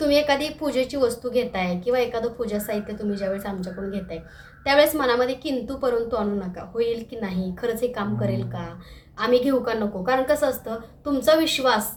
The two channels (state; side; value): identical; both; correlation 1.00